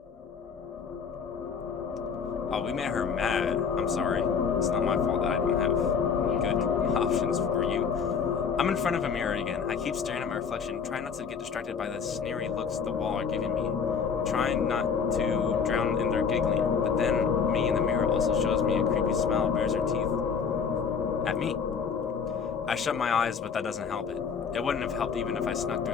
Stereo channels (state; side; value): quieter; right; 6.2 dB